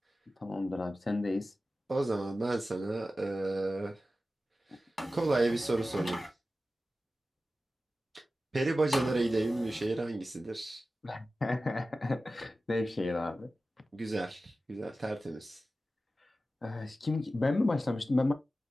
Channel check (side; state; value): both; normal; correlation 0.94